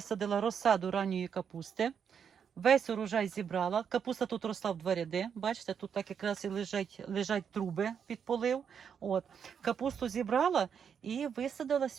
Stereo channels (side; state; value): left; quieter; 7.4 dB